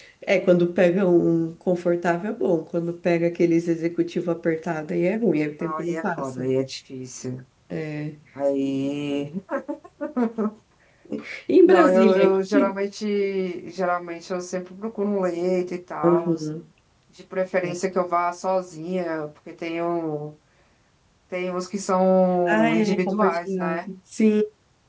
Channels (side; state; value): both; identical; correlation 1.00